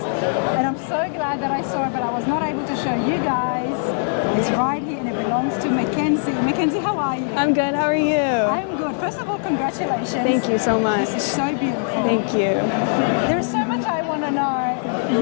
I'm so glad that I saw it, but I was not able to show you guys. It's right here, and it belongs to Mackenzie. Mackenzie, how are you? I'm good. How are you? I'm good. First of all, congratulations. Thank you so much. This is so beautiful. Thank you. There is so much I want to know.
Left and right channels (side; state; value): right; silent; digital silence